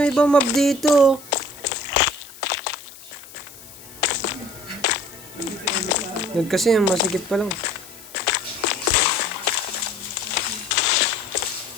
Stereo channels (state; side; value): noise; left; hiss, 18 dB below the sound